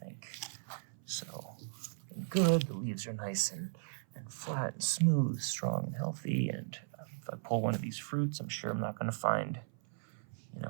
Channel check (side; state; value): left; silent; 53 dB below the other